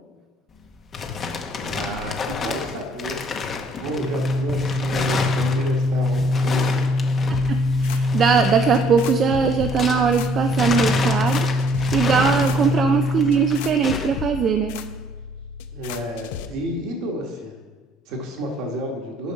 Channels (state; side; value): normal; both; correlation 0.62